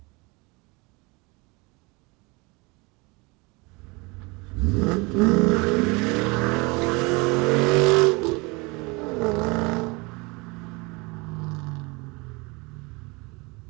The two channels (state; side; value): quieter; left; 26.8 dB